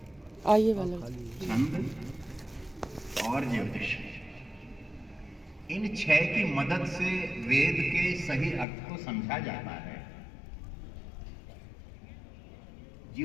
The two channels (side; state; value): right; drops out; at 8.7 s